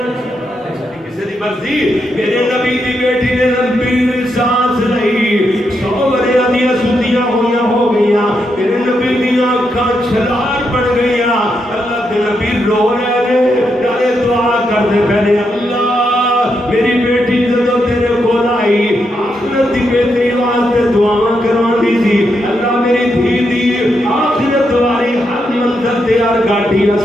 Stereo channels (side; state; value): both; normal; correlation 0.82